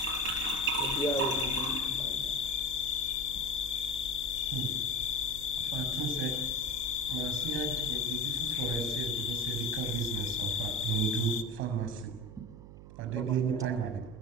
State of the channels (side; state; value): right; noise; hum, 15 dB below the sound